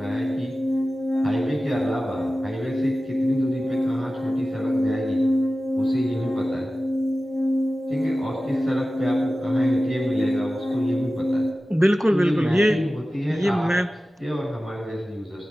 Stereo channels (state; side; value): normal; both; correlation 0.95